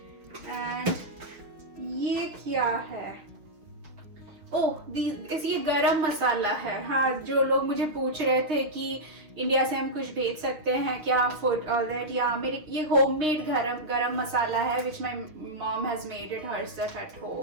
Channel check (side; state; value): left; late; 6.4 ms